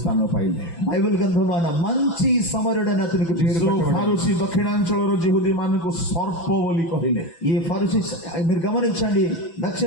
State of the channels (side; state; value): right; late; 6.0 ms